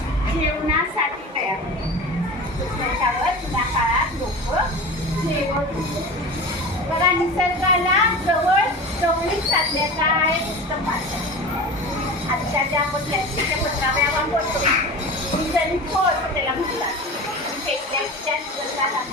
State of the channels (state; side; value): normal; both; correlation 0.32